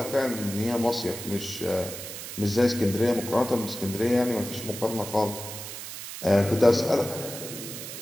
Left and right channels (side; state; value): right; noise; hiss, 9 dB below the sound